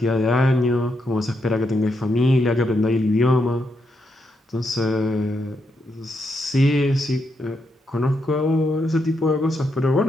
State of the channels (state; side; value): normal; both; correlation 0.81